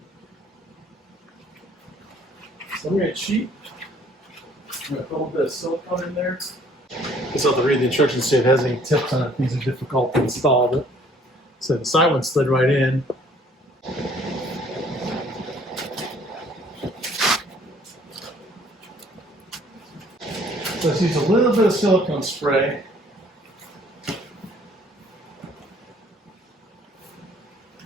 So I'm going to cheat. I'm going to put a little bit of silicone in there. Just have to read the instructions to see if it has any tips on it. These are difficult to install. But so the side one slid right in. Let's use a little bit of silicone spray.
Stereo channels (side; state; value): both; normal; correlation 0.58